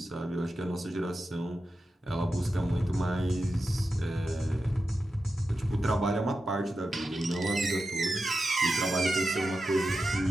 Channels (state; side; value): normal; both; correlation 0.90